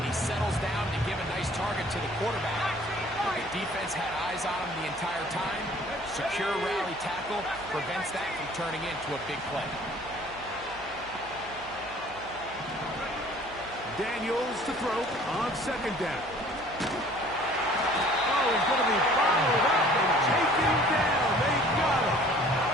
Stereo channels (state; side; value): noise; right; hum, 19 dB below the sound